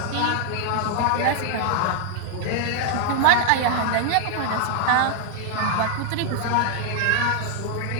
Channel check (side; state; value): both; different; correlation 0.00